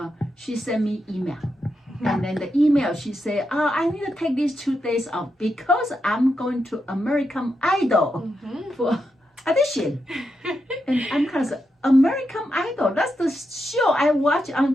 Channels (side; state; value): both; normal; correlation 0.85